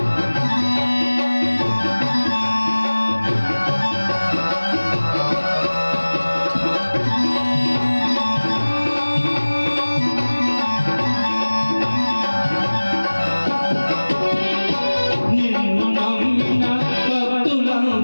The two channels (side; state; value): both; inverted; correlation -1.00